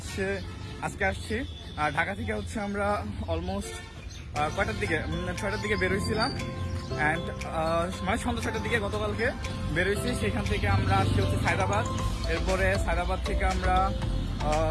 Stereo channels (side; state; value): both; identical; correlation 1.00